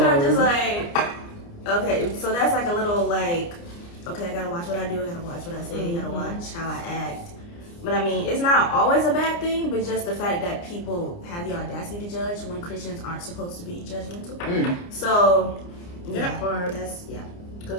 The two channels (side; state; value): right; late; 29 ms